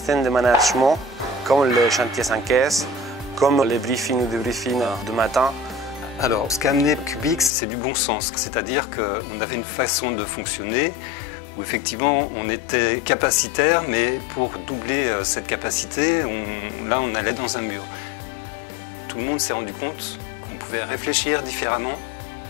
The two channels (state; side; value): drops out; right; at 7.5 s